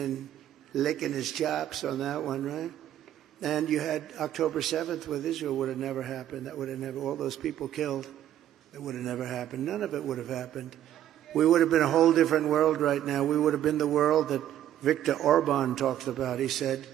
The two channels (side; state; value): left; quieter; 11.6 dB